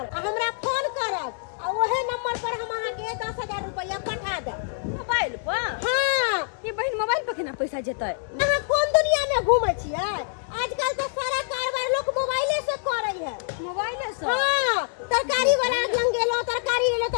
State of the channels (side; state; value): right; silent; digital silence